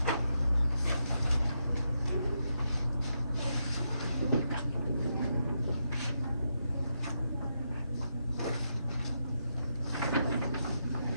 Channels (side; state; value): both; inverted; correlation -0.82